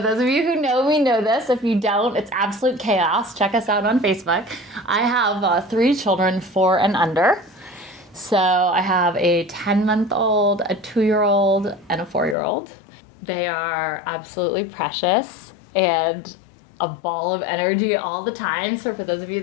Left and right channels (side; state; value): right; drops out; at 12.4 s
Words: of you who know me know this. If you don't, it's absolute chaos. Check us out on Facebook. I have 3 children, 4 and under. So I have a 10-month-old, a 2-year-old, and a 4-year-old. They are absolutely precious and a ball of energy all the time. So for those of you